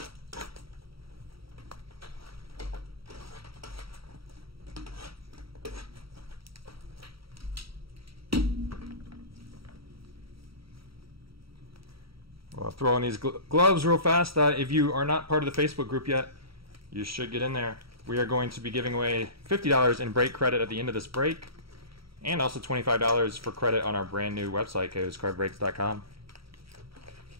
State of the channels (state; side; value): late; left; 0.75 ms